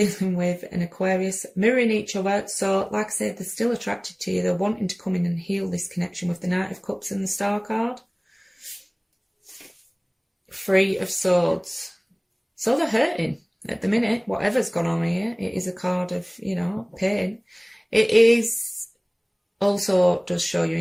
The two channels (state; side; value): identical; both; correlation 1.00